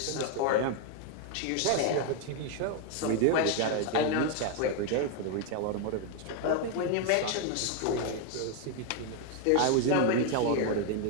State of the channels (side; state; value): both; different; correlation 0.01